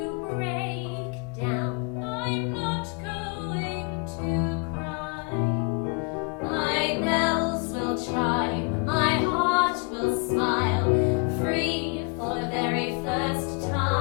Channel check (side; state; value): right; quieter; 31.5 dB